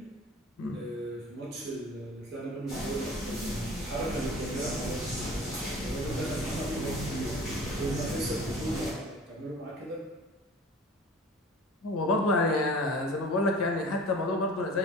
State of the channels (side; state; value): both; normal; correlation 0.43